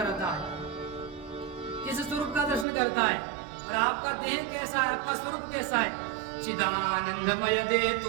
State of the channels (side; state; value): left; drops out; at 2.7 s